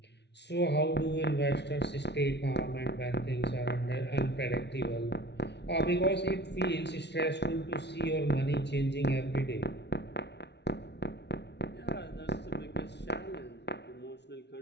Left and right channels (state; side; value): late; right; 0.50 ms